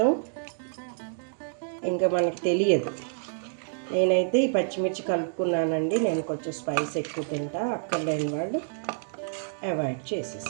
ఇంకా మనకి తెలియదు. నేనైతే ఈ పచ్చిమిర్చి కలుపుకున్నానండి. నేను కొంచెం స్పైస్ ఎక్కువ తింటా, అక్కర్లేని వాళ్ళు అవాయిడ్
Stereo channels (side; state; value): left; silent; digital silence